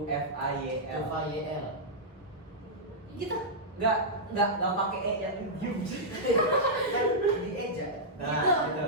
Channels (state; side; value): normal; both; correlation -0.10